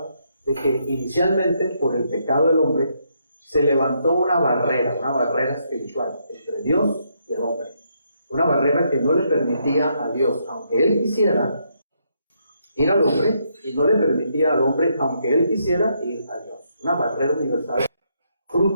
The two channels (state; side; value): inverted; both; correlation -0.76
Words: de que inicialmente por el pecado del hombre se levantó una barrera espiritual entre Dios y el hombre. Una barrera que no le permitía a Dios, aunque Él quisiera, ir al hombre, y no le permitía al hombre, aunque Él quisiera, ir a Dios. Una barrera universal,